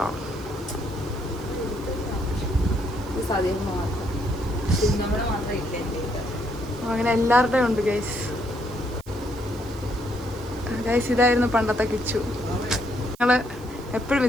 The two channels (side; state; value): right; noise; hiss, 24 dB below the sound